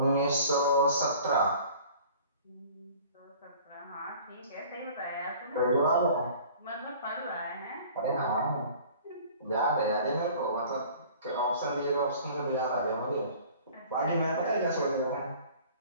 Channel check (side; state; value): both; inverted; correlation -0.48